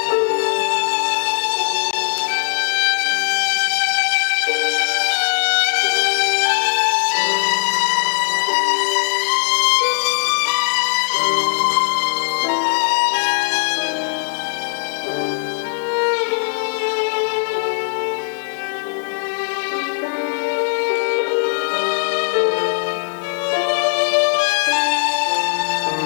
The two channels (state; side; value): silent; right; digital silence